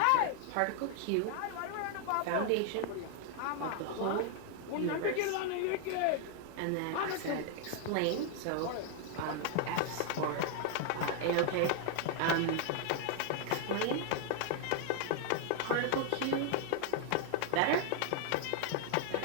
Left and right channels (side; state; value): both; different; correlation 0.00